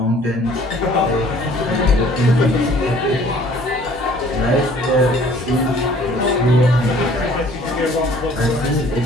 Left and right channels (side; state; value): right; noise; hum, 22 dB below the sound